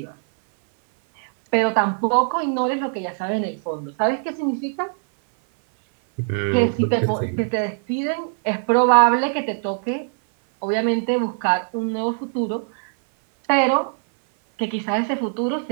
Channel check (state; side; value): silent; left; 58 dB below the other